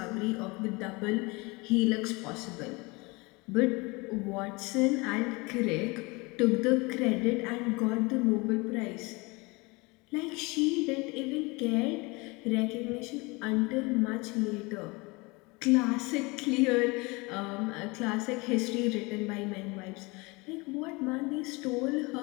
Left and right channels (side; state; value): right; quieter; 25.8 dB